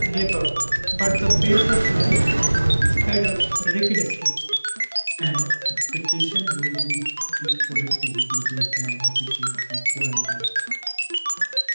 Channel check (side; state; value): both; inverted; correlation -1.00